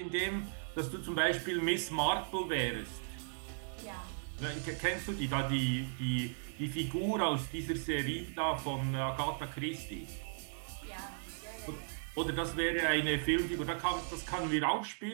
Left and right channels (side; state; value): left; silent; digital silence